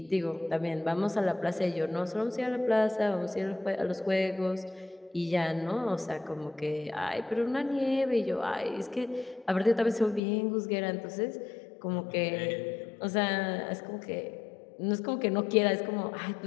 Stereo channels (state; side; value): drops out; right; at 10.2 s